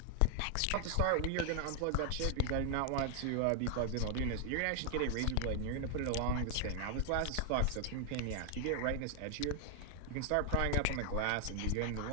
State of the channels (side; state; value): both; different; correlation 0.00